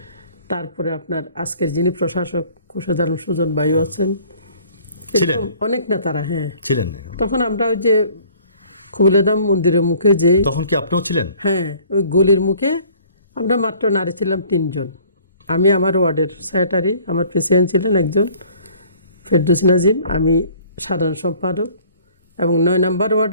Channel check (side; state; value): both; inverted; correlation -0.54